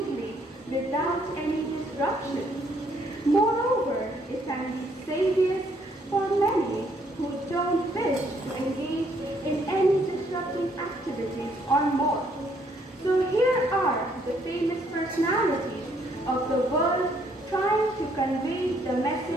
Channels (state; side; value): normal; both; correlation 0.68